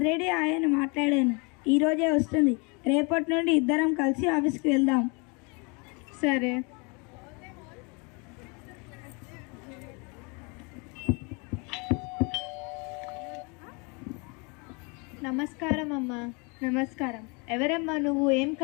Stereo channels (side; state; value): right; quieter; 31.2 dB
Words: ఆయన మాట్లాడాను. ఈరోజే వస్తుంది. రేపటి నుండి ఇద్దరం కలిసి ఆఫీస్కి వెళ్దాం. సరే. నమస్కారం అమ్మా. నమస్కారం. ఎవరమ్మా నువ్వు? ఏం